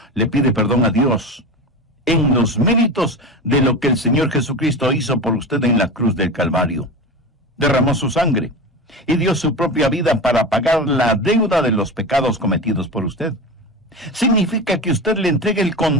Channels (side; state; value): both; normal; correlation 0.26